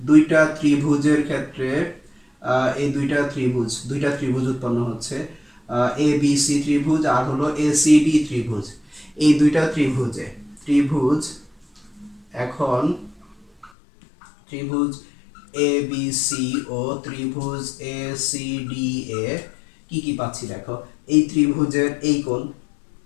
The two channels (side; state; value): right; drops out; at 13.7 s